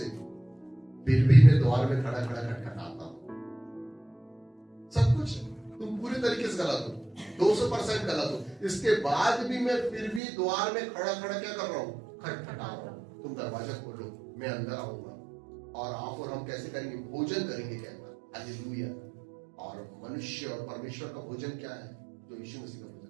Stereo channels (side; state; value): left; drops out; at 10.2 s